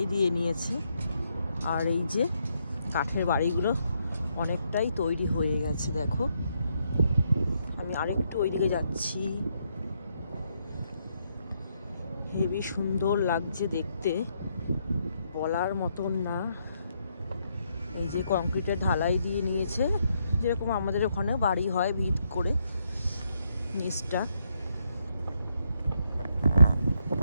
দিয়ে নিয়েছে, আর এই যে কাঠের বাড়িগুলো অনেকটাই তৈরি হয়ে গেছে। দেখো আমি আরেকটু ওইদিকে যাচ্ছি, হেবি সুন্দর লাগছে দেখতে, বলার মতন না। এই যে কংক্রিটের ঢালাই দিয়ে নিয়েছে, যেরকম আমাদের ওখানে বাড়ি হয় ভিত করে। নিচটা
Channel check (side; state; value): both; inverted; correlation -0.76